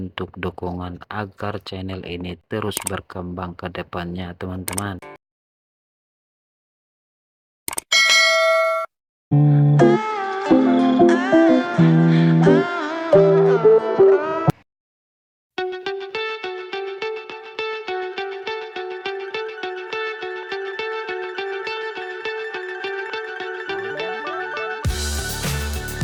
dukungan agar channel ini terus berkembang ke depannya, teman-teman.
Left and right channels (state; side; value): identical; both; correlation 1.00